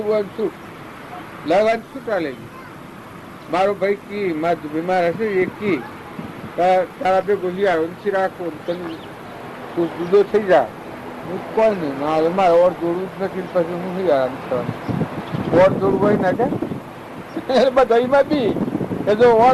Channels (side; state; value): both; identical; correlation 1.00